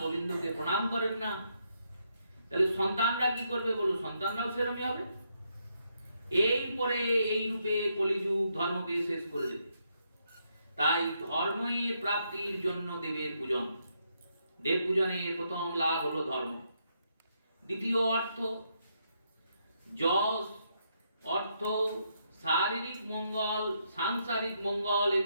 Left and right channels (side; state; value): both; inverted; correlation -0.78